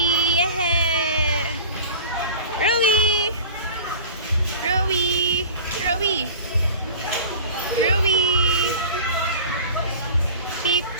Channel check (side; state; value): both; inverted; correlation -0.39